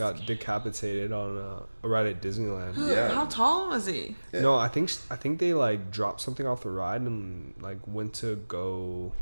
decapitated on a ride at Disneyland. Yeah. How tall was he? Yeah. No, I think they like dropped something off the ride and like went to go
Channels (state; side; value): inverted; both; correlation -1.00